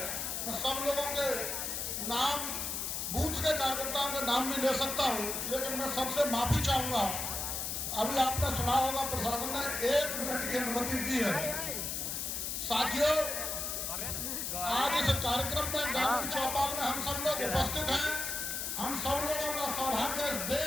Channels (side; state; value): left; noise; hiss, 2 dB below the sound